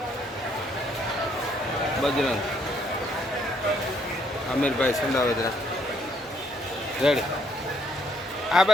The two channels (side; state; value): both; normal; correlation 0.69